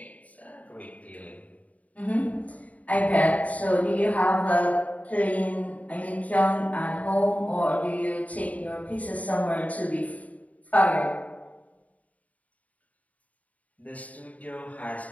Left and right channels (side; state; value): right; late; 0.070 ms